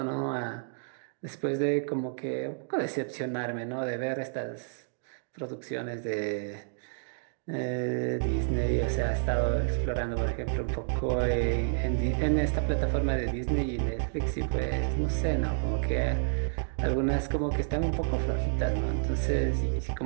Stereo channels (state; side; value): silent; left; digital silence